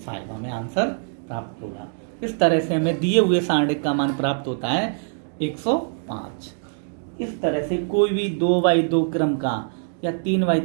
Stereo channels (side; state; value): left; silent; digital silence